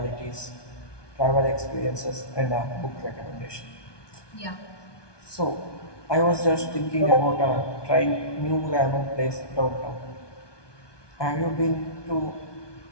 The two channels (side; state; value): right; late; 1.2 ms